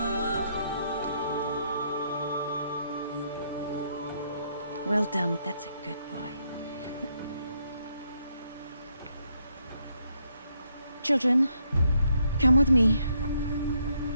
Well done. That's a good boy. Children, come with me.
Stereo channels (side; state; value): both; inverted; correlation -0.75